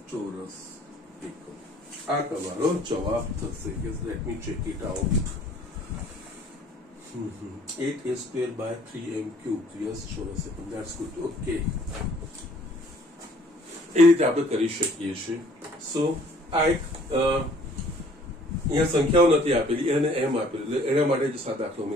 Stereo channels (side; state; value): both; normal; correlation 0.57